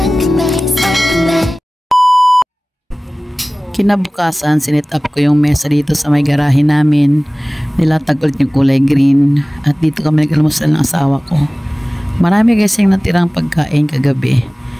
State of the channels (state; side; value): normal; both; correlation 0.98